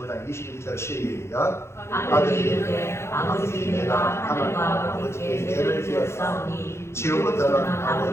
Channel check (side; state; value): right; late; 0.13 ms